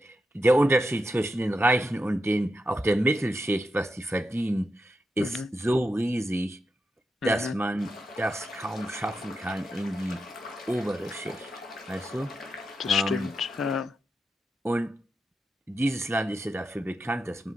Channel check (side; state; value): both; normal; correlation 0.87